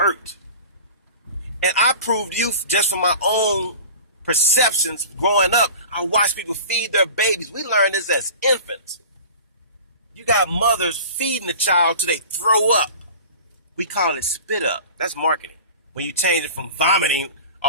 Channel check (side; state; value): both; inverted; correlation -0.39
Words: And I proved you just from my own perceptions growing up. I watched people feed their babies. We learned this as infants. You got mothers feeding the child till they throw up. We call it spit up. That's marketing. When you change it from vomiting